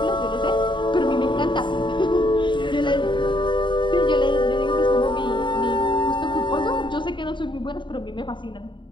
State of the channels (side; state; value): right; late; 0.23 ms